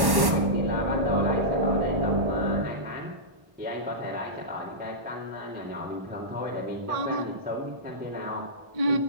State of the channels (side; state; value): left; late; 1.1 ms